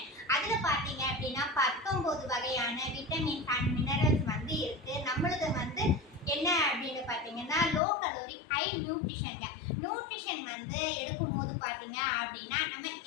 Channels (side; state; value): right; drops out; at 7.8 s